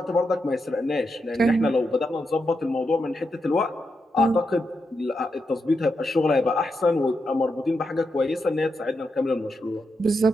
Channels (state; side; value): normal; both; correlation 0.85